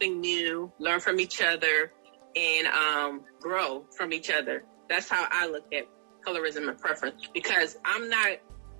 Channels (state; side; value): silent; left; digital silence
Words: new, learn from each other, and grow from each other. That's how I look at colorism and preference, because I'm not